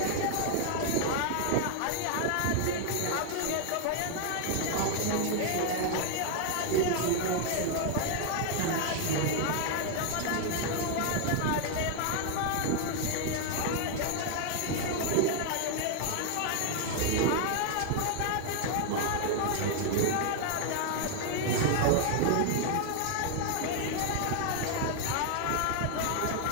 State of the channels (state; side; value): different; both; correlation 0.00